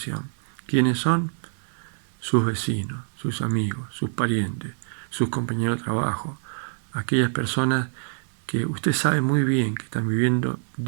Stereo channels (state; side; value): silent; left; digital silence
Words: ¿Quiénes son? Sus vecinos, sus amigos, sus parientes, sus compañeros de trabajo, aquellas personas que usted sabe muy bien que están viviendo